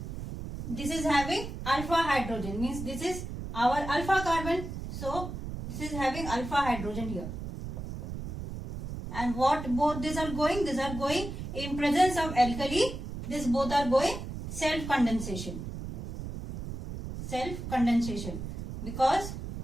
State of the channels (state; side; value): noise; right; rumble, 7 dB below the sound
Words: this is having alpha hydrogen, means this is our alpha carbon. So this is having alpha hydrogen here. And what both these are going? These are going in presence of alkali. These both are going self condensation. Self condensation, because